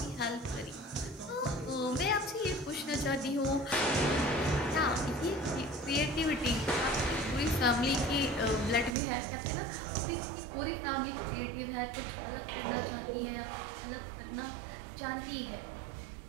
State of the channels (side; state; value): left; drops out; at 9.0 s